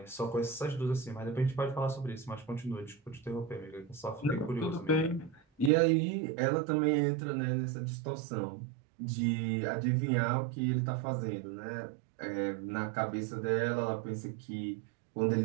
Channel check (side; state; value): left; drops out; at 5.7 s